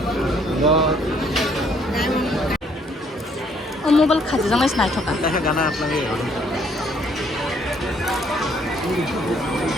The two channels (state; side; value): normal; both; correlation 0.65